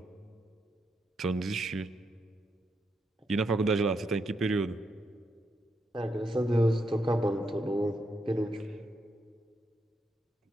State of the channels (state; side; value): normal; both; correlation 0.81